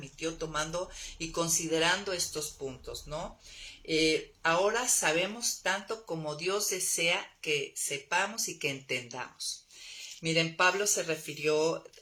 tomando y considerando estos puntos, ¿no? Ahora sabemos tanto como Dios desea que sepamos y que entendamos. Miren, Pablo se refirió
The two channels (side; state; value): both; identical; correlation 1.00